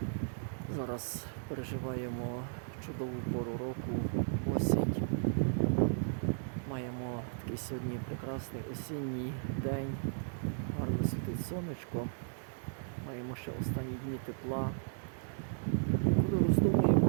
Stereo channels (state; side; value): silent; left; digital silence